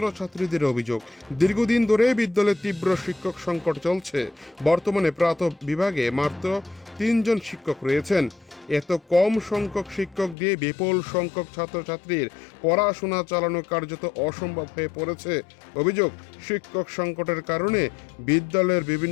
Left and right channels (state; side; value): drops out; right; at 10.4 s